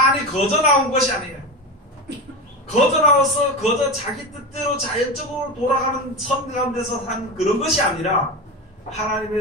거저 나온 것이 아니에요. 거저 나와서 거저 자기 뜻대로 자연적으로 돌아가는 섭리 가운데서 한 그런 것이 아니라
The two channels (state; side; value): normal; both; correlation 0.22